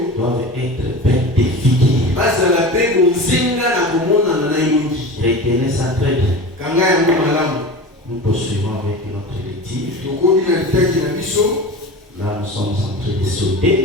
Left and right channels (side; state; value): both; normal; correlation 0.32